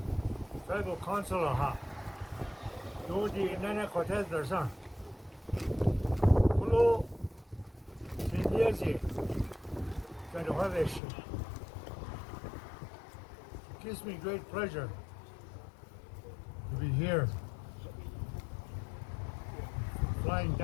Tribal Councilor ha. Do the Nana Cortez Darsan. Hello. Sindiazi. Trying to have this. It gives me great pleasure to be here. Flying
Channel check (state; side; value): drops out; right; at 11.0 s